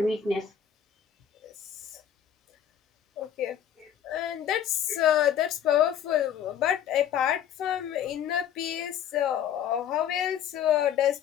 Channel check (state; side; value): quieter; right; 9.4 dB